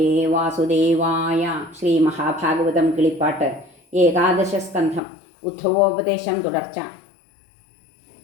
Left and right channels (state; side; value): drops out; right; at 5.0 s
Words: വാസുദേവായ. ശ്രീ മഹാഭാഗവതം കിളിപ്പാട്ട് ഏകാദശ സ്കന്ധം. ഉദ്ധവോപദേശം തുടർച്ച.